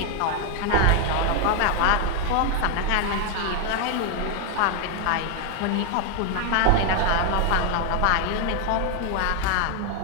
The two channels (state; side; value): different; both; correlation 0.00